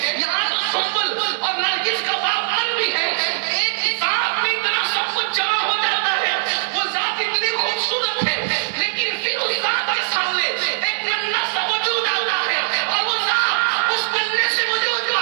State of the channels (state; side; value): silent; left; digital silence